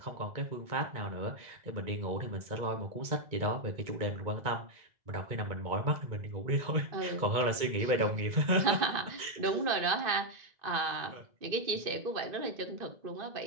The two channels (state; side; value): late; left; 2.2 ms